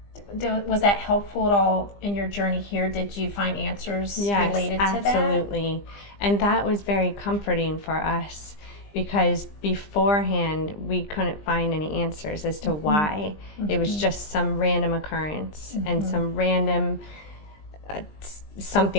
Was that helpful at all in your journey here? Did you find answers related to that? Yes, absolutely. And that was very comforting for us, because beforehand we couldn't find any answers as to why. It was just some random occurrence and some random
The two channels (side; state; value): right; late; 20 ms